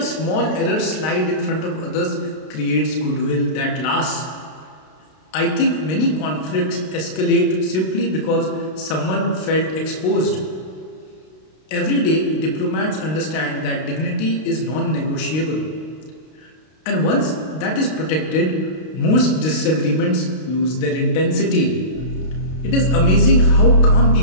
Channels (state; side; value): late; right; 32 ms